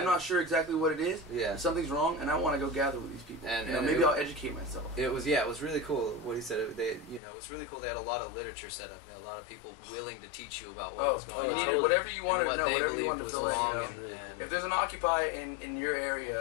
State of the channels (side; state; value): right; drops out; at 7.2 s